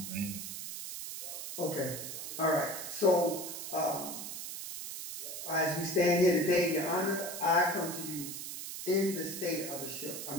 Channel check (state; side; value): noise; right; hiss, 7 dB below the sound